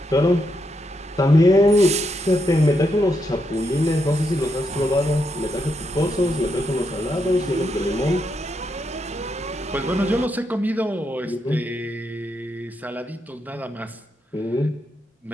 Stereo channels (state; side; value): normal; both; correlation 0.81